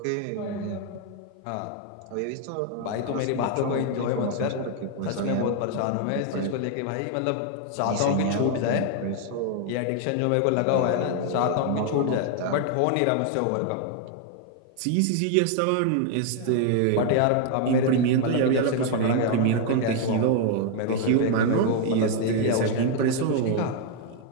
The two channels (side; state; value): both; different; correlation 0.00